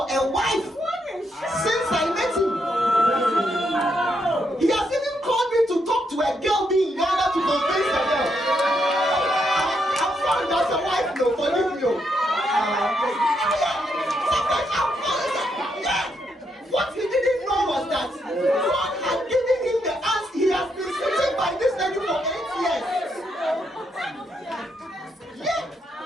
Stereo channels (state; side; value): normal; both; correlation 0.78